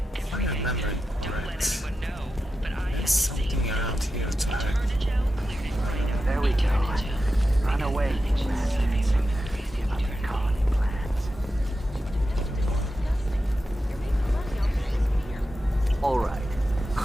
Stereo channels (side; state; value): both; normal; correlation 0.90